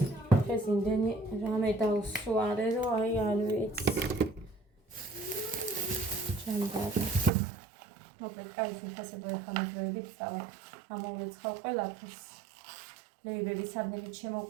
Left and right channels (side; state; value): left; drops out; at 7.3 s